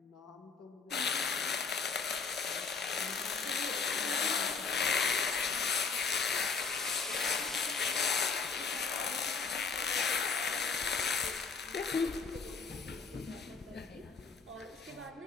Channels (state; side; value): quieter; right; 5.0 dB